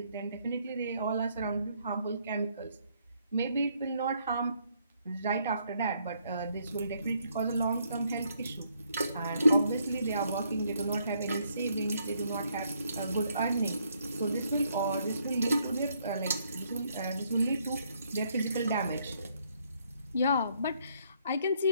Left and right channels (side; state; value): both; inverted; correlation -0.71